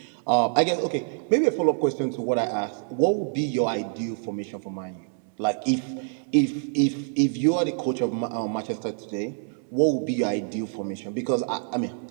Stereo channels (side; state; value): left; silent; 58 dB below the other